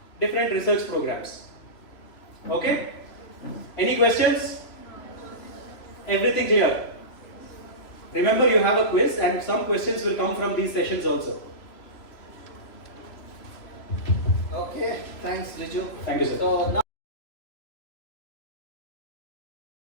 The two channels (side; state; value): right; late; 3.0 ms